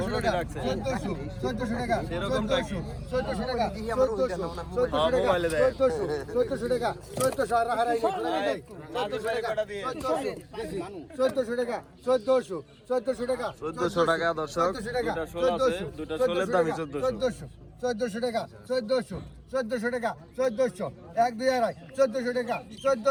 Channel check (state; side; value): identical; both; correlation 1.00